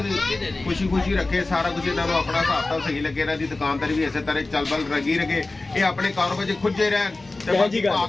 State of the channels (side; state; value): right; quieter; 3.2 dB